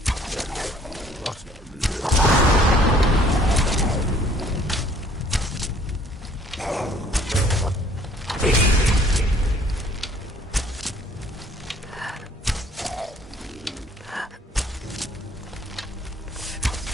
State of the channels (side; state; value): both; normal; correlation 0.58